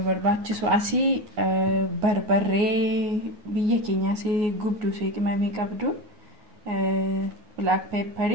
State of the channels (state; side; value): late; left; 9.4 ms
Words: barbaachisu asii barbarree biyya keenyaas gubduu qimamee qabdu, black pepper,